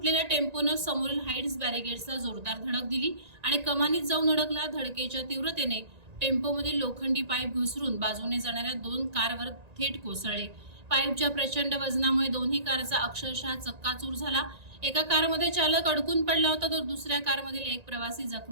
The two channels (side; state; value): left; late; 1.9 ms